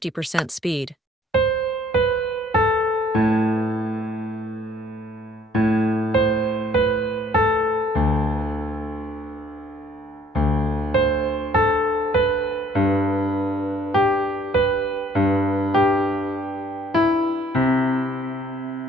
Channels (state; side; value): normal; both; correlation 0.62